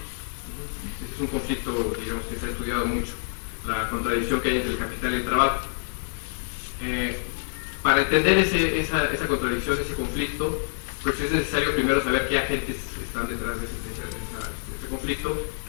Este es un conflicto, digamos, que se ha estudiado mucho, la contradicción que hay entre el capital y el trabajo. Para entender esa contradicción, ese conflicto, pues es necesario primero saber qué agentes están detrás de ese este conflicto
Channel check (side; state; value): right; silent; digital silence